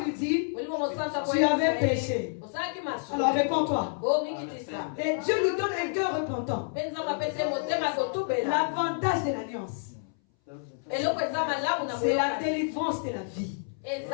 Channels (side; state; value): right; silent; 59 dB below the other